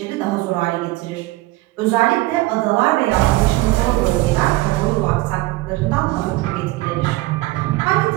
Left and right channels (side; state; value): left; quieter; 19.4 dB